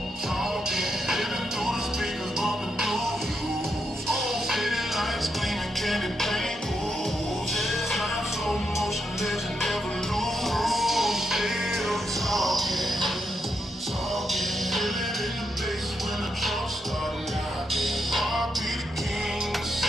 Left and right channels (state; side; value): normal; both; correlation 0.82